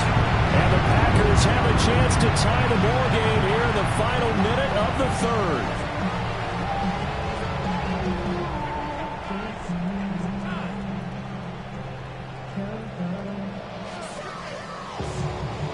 And the Packers have a chance to tie the ball game here in the final minute of the 3rd.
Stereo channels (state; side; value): identical; both; correlation 1.00